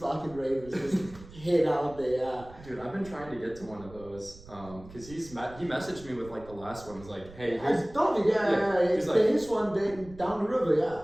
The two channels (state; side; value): noise; right; rumble, 19 dB below the sound